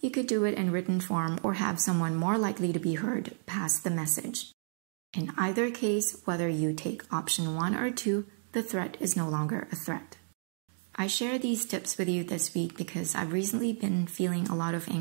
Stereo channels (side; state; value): left; silent; 57 dB below the other